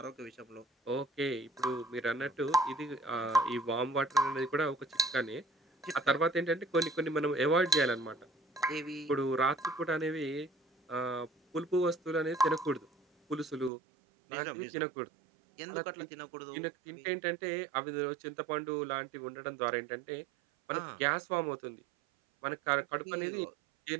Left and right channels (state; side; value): drops out; left; at 13.7 s